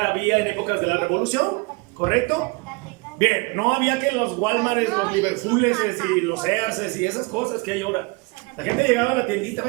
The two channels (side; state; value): left; quieter; 27.8 dB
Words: en épocas de la Revolución, ¿correcto? Bien, no había que los Walmarts, los Liverpooles y los Sears y esas cosas que hay ahora. La gente llegaba a la tiendita,